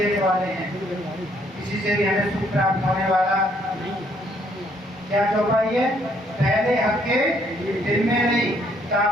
वाले हैं, किसी से भी हमें सुख प्राप्त होने वाला क्या चौपाई है? पहले हक्के दिल में नहीं, ता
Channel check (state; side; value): normal; both; correlation 0.67